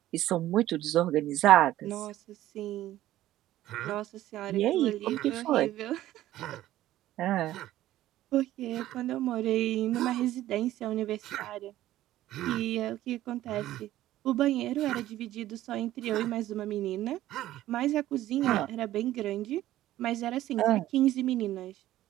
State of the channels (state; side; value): quieter; left; 14.3 dB